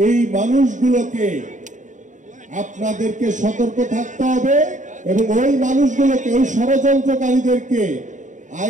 এই মানুষগুলোকে আপনাদেরকে সতর্ক থাকতে হবে এবং ওই মানুষগুলোকে, ওই ষড়যন্ত্রকারীদেরকে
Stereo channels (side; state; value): left; late; 0.36 ms